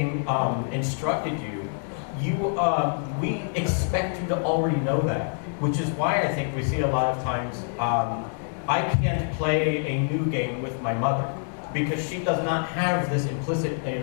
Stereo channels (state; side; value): silent; right; digital silence